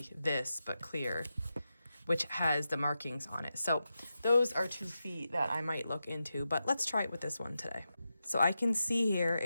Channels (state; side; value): inverted; both; correlation -0.90